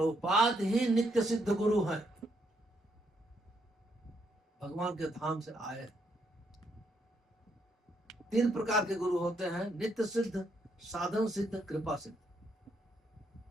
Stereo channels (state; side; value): normal; both; correlation 0.75